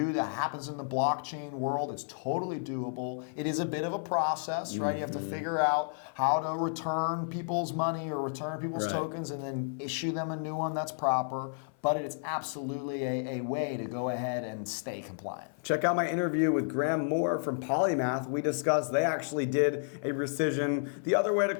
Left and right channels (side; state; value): right; silent; 55 dB below the other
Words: that happens in the blockchain world. It's totally doable. It is a bit of a process, right? You have to figure out how to return people's money or return people's tokens and then issue them a new one that's proper. But it's absolutely a way to go ahead and stay compliant. Check out my interview with Graham Moore from Polymath. We discussed they actually did a rescission. The other way to